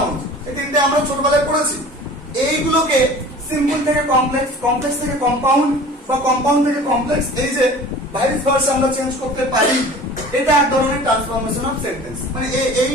এই তিনটে আমরা ছোটবেলায় পড়েছি। এইগুলোকে সিম্পল থেকে কমপ্লেক্স, কমপ্লেক্স থেকে কম্পাউন্ড বা কম্পাউন্ড থেকে কমপ্লেক্স, এই যে ভাইস ভার্সা আমরা চেঞ্জ করতে পারি, এটা এক ধরনের ট্রান্সফরমেশন অফ সেন্টেন্স। মানে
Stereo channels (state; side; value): normal; both; correlation 0.42